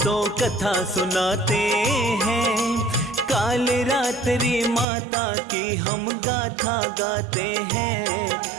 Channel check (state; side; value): drops out; left; at 4.9 s